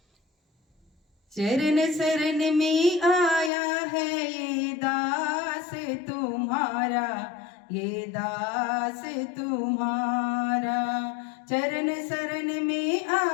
चरण शरण में आया है ये दास तुम्हारा, ये दास तुम्हारा। चरण शरण में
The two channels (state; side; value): drops out; right; at 3.5 s